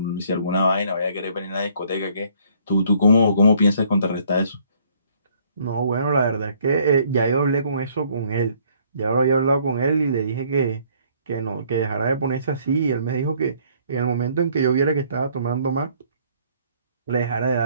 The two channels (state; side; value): inverted; both; correlation -0.62